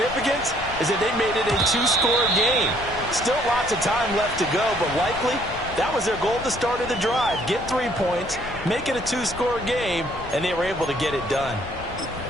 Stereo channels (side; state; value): left; noise; rumble, 14 dB below the sound